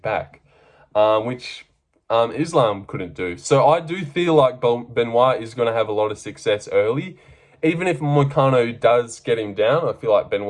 which Islam couldn't do. So I do feel like Benoit is going to have a lot of success early. Even if Moicano does get him down, I feel like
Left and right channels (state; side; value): identical; both; correlation 1.00